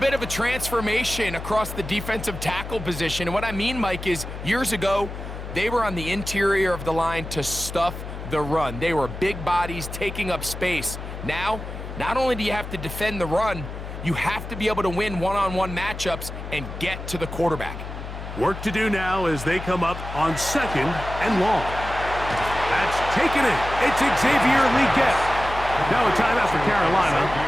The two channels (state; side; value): noise; left; hum, 9 dB below the sound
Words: of a transformation across the defensive tackle position. And what I mean, Mike, is years ago, they were on the interior of the line to stuff the run. They were big bodies taking up space. Now, not only do you have to defend the run, you have to be able to win one-on-one matchups and get to the quarterback. Work to do now as they come up on 2nd and long. That's taken in. It's Xavier Leggett. Now a timeout for Carolina.